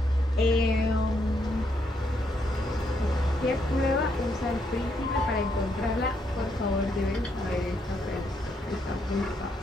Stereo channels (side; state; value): both; normal; correlation 0.76